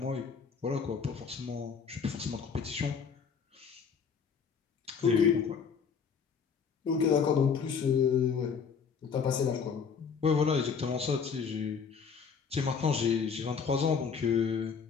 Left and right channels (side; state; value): right; quieter; 6.2 dB